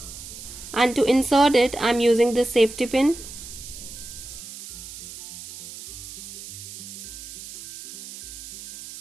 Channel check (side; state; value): right; noise; hiss, 13 dB below the sound